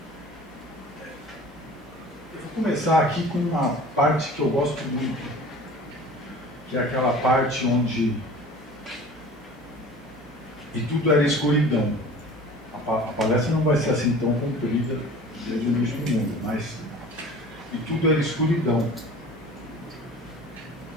Eu vou começar aqui com uma parte que eu gosto muito, que é aquela parte onde e tudo era escuridão. A palestra não vai ser assim tão comprida desde o início do mundo, mas e tudo era escuridão.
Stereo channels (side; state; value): both; normal; correlation 0.43